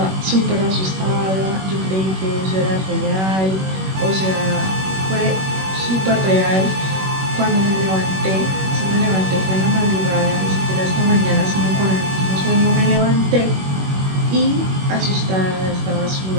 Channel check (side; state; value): left; late; 21 ms